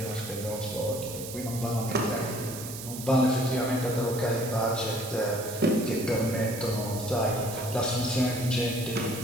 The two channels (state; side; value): noise; right; hiss, 10 dB below the sound